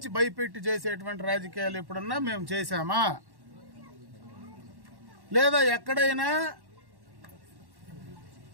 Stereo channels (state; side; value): late; left; 1.1 ms